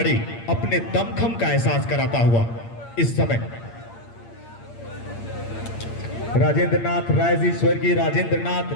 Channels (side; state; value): right; late; 8.7 ms